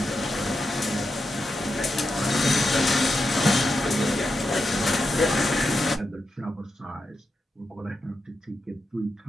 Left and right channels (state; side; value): normal; both; correlation 0.87